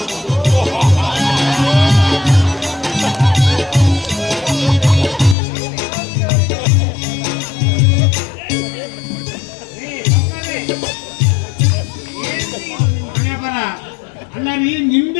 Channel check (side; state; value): right; drops out; at 5.4 s